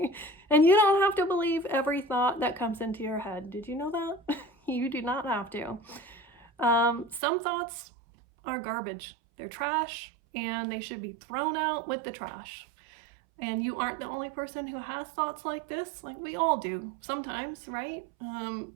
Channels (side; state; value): left; drops out; at 7.2 s